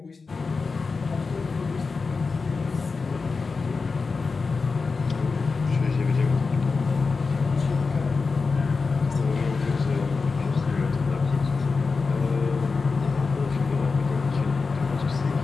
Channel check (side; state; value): right; quieter; 4.5 dB